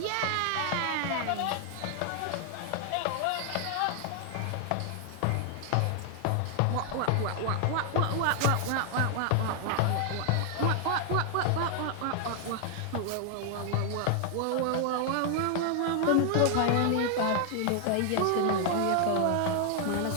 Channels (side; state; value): both; different; correlation 0.00